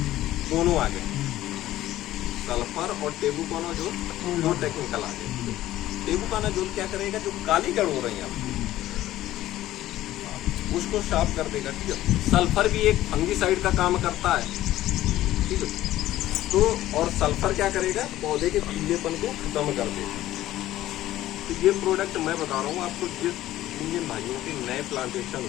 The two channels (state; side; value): quieter; right; 14.5 dB